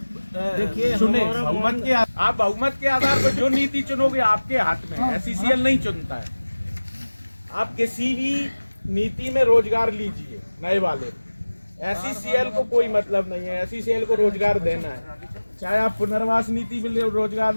देखिए, चुने। हमारा बहुमत के आप बहुमत के आधार पर जो नीति चुनोगे आपके हाथ में है। SCCL नहीं चुनता है। आप किसी भी नीति में रोजगार लीजिए नए वाले, SCCL को कोई मतलब नहीं है। SCCL को रोजगार देना है, चाहे आप पुनर्वास नीति में रोजगार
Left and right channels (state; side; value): inverted; both; correlation -1.00